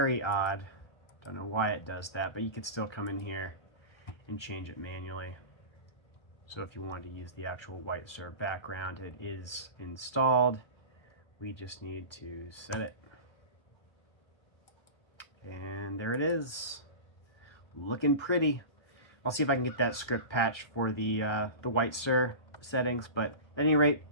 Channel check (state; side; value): late; right; 1.2 ms